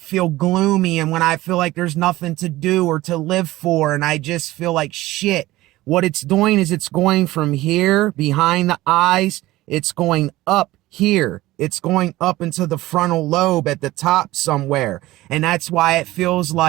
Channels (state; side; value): quieter; left; 17.6 dB